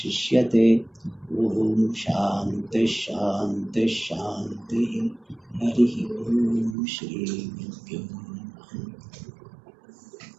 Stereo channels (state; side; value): drops out; left; at 6.8 s